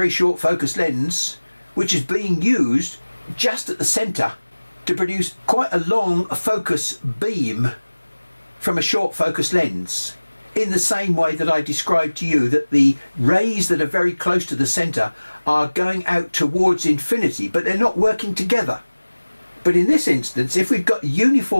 short focus lens which is being used just at the centre to produce quite a long focus beam from a short focus lens, in the same way that I described to you that the rays that are very close to the centre are going out towards infinity, but they're not working together. But in this instance, if we've got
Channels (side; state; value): both; inverted; correlation -1.00